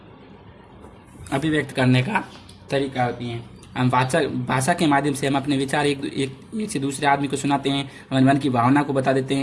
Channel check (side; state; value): both; identical; correlation 1.00